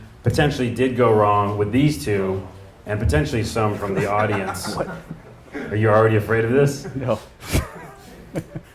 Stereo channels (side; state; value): both; identical; correlation 1.00